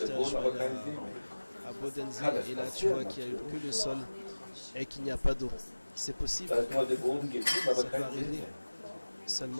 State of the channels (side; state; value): both; inverted; correlation -1.00